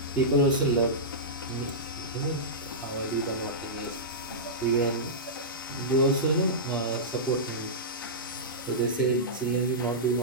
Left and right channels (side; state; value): both; normal; correlation -0.15